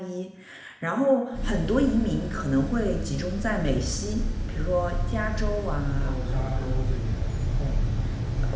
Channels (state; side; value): identical; both; correlation 1.00